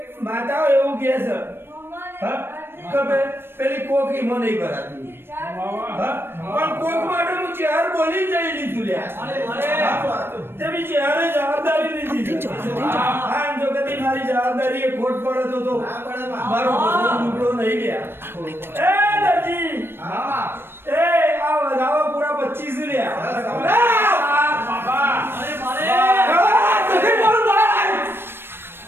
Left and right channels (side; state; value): left; late; 0.11 ms